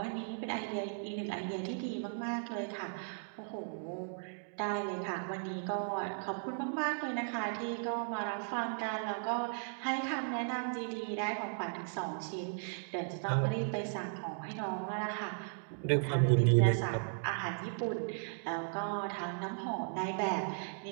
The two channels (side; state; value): left; silent; digital silence